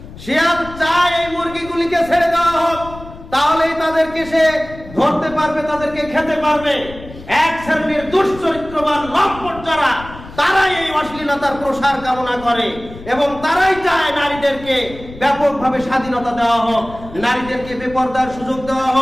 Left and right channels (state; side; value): noise; left; rumble, 16 dB below the sound